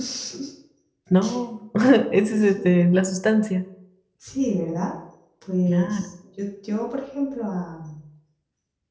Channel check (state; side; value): identical; both; correlation 1.00